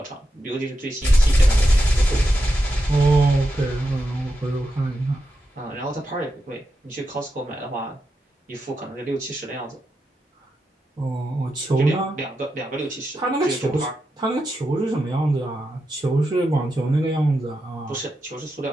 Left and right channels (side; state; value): both; normal; correlation 0.87